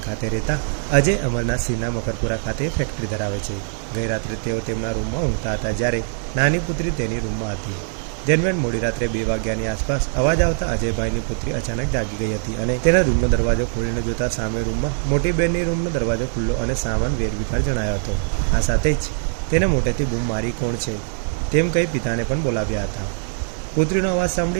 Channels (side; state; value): left; silent; digital silence